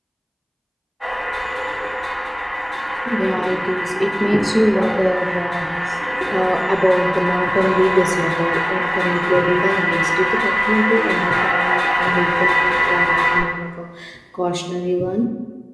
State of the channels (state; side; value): identical; both; correlation 1.00